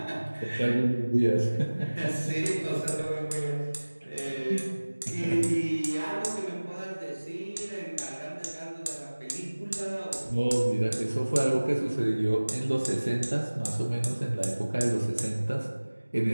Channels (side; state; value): both; inverted; correlation -1.00